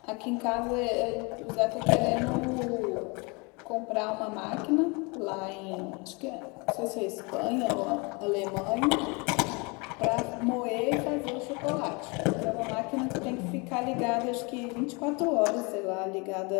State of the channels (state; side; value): quieter; right; 29.3 dB